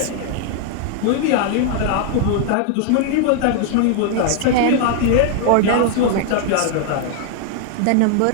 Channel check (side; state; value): both; different; correlation 0.00